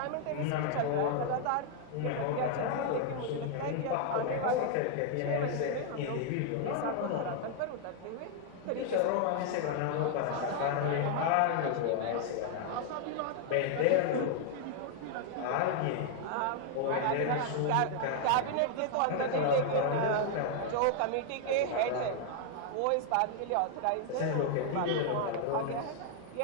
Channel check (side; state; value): both; different; correlation 0.00